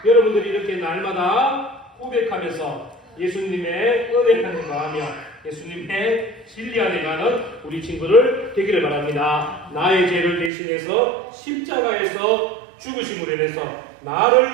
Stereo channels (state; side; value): drops out; left; at 10.5 s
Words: 여러분들이 이렇게 날마다 고백하면서 예수님의 은혜 안에 거하며 예수님의 진리 안에 가는 우리 친구들 되기를 바랍니다. 나의 죄를 대신해서 십자가에서 죽으심으로 인해서